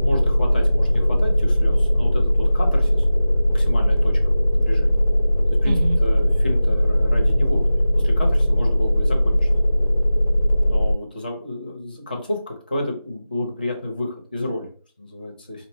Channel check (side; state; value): both; inverted; correlation -0.96